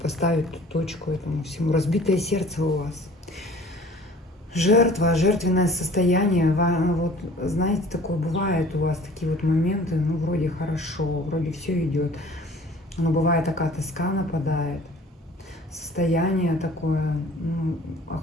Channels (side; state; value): both; normal; correlation 0.49